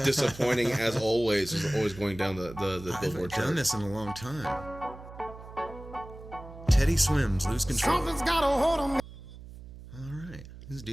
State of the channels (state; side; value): noise; right; hum, 16 dB below the sound